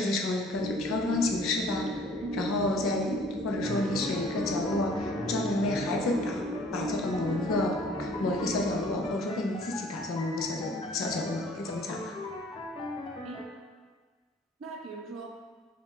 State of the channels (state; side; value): normal; both; correlation 0.54